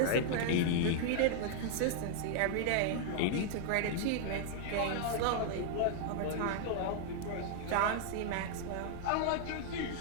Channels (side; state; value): both; different; correlation -0.01